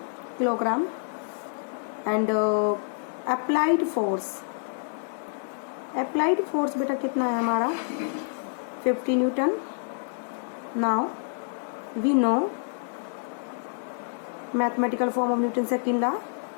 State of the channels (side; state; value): right; silent; digital silence